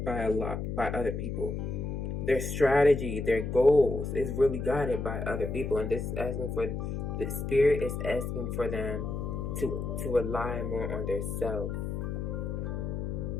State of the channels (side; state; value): left; noise; hum, 3 dB below the sound